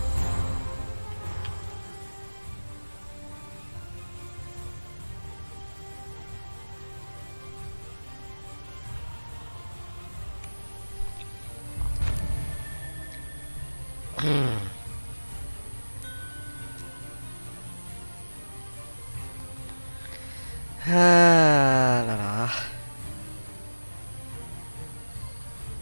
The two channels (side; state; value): both; inverted; correlation -1.00